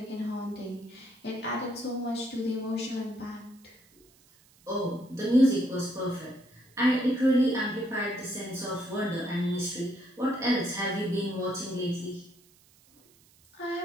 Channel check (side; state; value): right; noise; hiss, 29 dB below the sound